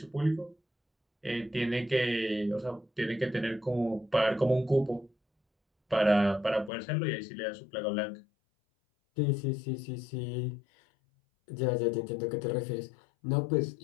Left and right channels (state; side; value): drops out; right; at 6.7 s